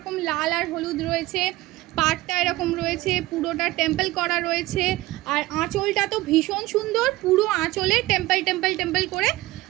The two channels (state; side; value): quieter; left; 18.5 dB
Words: লাল আর হলুদ রয়েছে, পাটটা এরকম রয়েছে, পুরোটা টেম্পল করা রয়েছে, আর আঁচলটা তো ভীষণ সুন্দর, পুরো আঁচলে টেম্পল করে